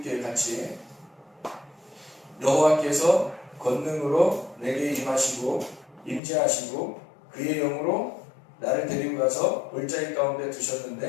같이. 여호와께서 권능으로 내게 임하시고 임재하시고 그의 영으로 나를 데리고 가서 골짜기 가운데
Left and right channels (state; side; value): drops out; right; at 6.2 s